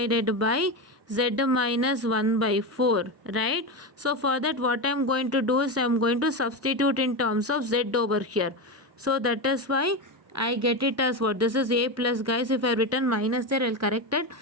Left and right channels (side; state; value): both; normal; correlation 0.17